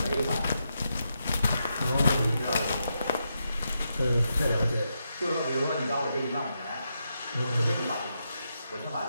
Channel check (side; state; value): both; inverted; correlation -0.84